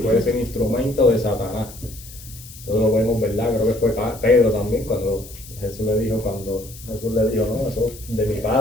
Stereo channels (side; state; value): left; noise; hiss, 17 dB below the sound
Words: ser instrumento de Satanás. Eso lo vemos, ¿verdad? Creo que fue Pedro también cuando Jesús le dijo, no, eso de mi